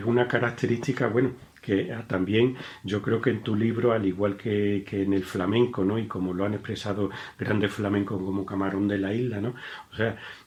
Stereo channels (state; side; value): identical; both; correlation 1.00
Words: una característica, bueno, que también yo creo que en tu libro, al igual que en el flamenco, ¿no? Y como lo han expresado grandes flamencos como Camarón de la Isla, ¿no? O sea,